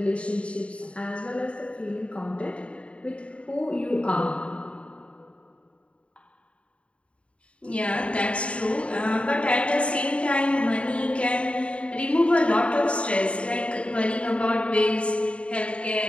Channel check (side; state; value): right; late; 0.060 ms